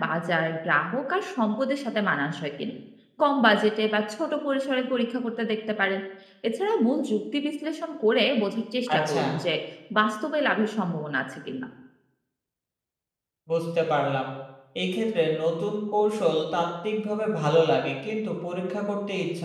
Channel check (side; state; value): both; identical; correlation 1.00